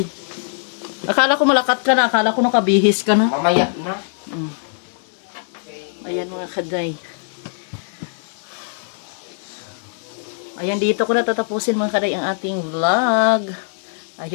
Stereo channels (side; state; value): right; silent; digital silence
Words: Akala ko malakat ka na. Akala ko nakabihis ka na. Mamaya na. Ayan mga kaday. Ayan, dito ko natatapusin mga kaday ang ating vlog. I